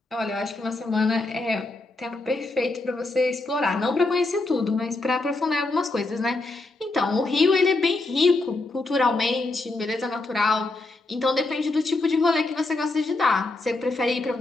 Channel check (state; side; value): quieter; right; 3.1 dB